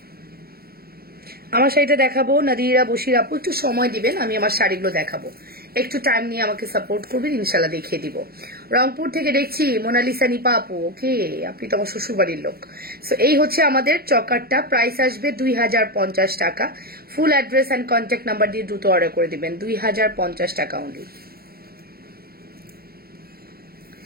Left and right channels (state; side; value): late; left; 0.44 ms